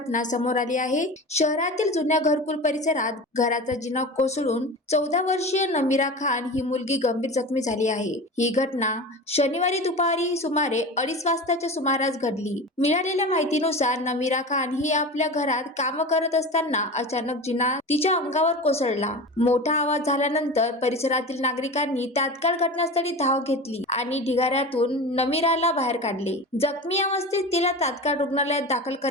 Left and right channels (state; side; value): normal; both; correlation 0.30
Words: समोर आली आहे। शहरातील जुन्या घरकुल परिसरात घराचा जिना कोसळून 14 वर्षीय नमीरा खान ही मुलगी गंभीर जखमी झाली आहे। ही घटना शनिवारी दुपारी सुमारे 2:30 वाजताच्या सुमारास घडली। मिळालेल्या माहितीनुसार नमीरा खान ही आपल्या घरात काम करत असताना अचानक जिना तिच्या अंगावर कोसळला। मोठा आवाज झाल्यानंतर परिसरातील नागरिकांनी तात्काळ घटनास्थळी धाव घेतली आणि ढिगाऱ्यातून नमीराला बाहेर काढले। जखमी अवस्थेत तिला तात्काळ रुग्णालयात दाखल